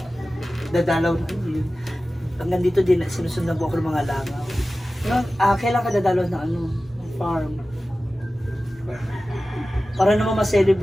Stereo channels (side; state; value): both; normal; correlation 0.95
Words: dadalaw na yun. Hanggang dito din, sinusundan ko ako ng mga langaw. Kailan ka dadalaw na farm? Para naman